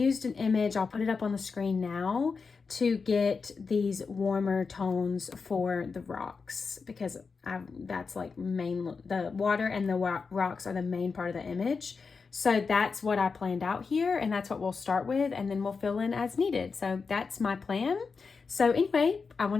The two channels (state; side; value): quieter; right; 4.9 dB